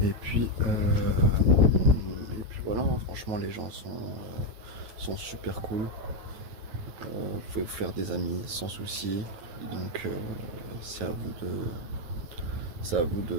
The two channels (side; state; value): left; late; 9.2 ms